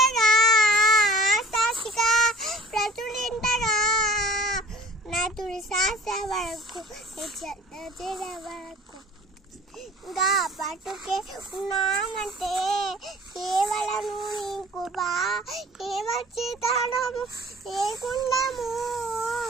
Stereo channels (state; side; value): normal; both; correlation 0.46